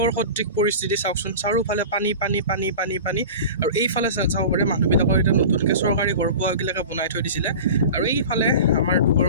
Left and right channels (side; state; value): both; inverted; correlation -0.34